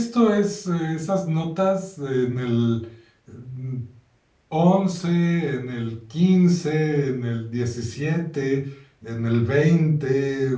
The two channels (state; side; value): identical; both; correlation 1.00